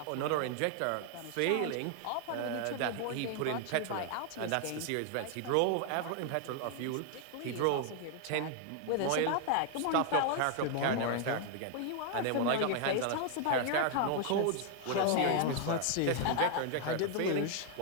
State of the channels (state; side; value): different; both; correlation 0.00